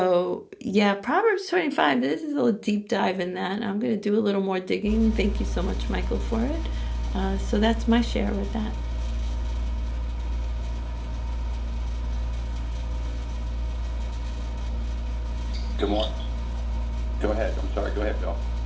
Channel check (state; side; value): identical; both; correlation 1.00